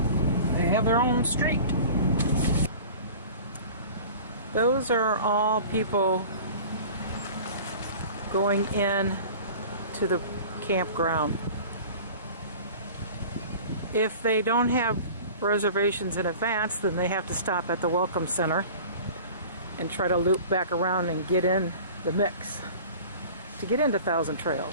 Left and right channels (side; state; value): both; inverted; correlation -0.41